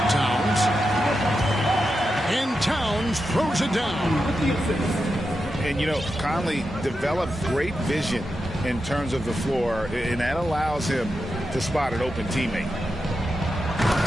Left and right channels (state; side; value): normal; both; correlation 0.88